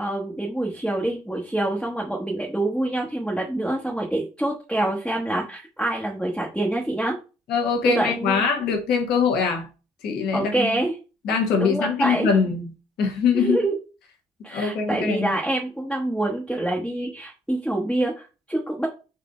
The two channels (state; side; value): normal; both; correlation 0.68